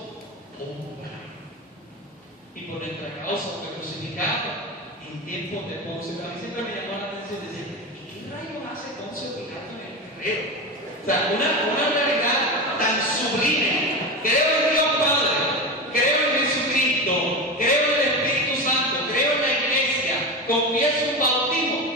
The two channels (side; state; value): both; normal; correlation 0.22